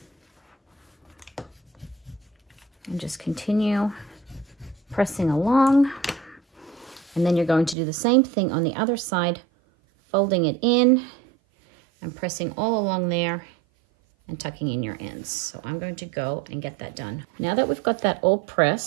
And just continue pressing along. And then you're going to do the same thing on the other side, folding it in and pressing all along there and tucking in your ends. So I'm going to go and get that done. Now that we've got that all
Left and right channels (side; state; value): left; drops out; at 7.8 s